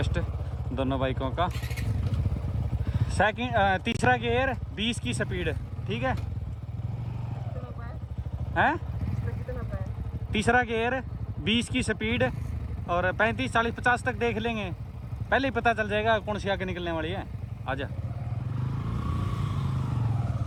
दोनों बाइकों का। तीसरा गियर 20 की स्पीड, ठीक है हैं? तीसरा गियर 20 की स्पीड और 35, 40, 50 तक देख लेंगे, पहले ही पता चल जाएगा कौन सी आगे निकलने वाली है। आजा।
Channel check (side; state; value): both; identical; correlation 1.00